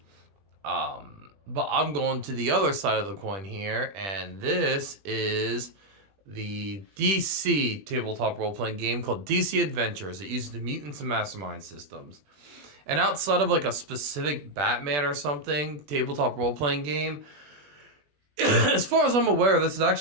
But I'm going to the other side of the coin here, and this is the DC tabletop role-playing game called DC Adventures. It uses the Mutants and Masterminds systems. And outside of like a specific Batman or something tabletop role-playing game, as far as I'm aware, this is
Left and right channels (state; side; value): late; left; 20 ms